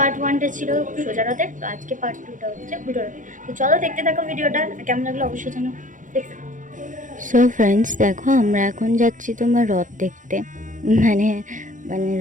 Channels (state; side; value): late; left; 0.37 ms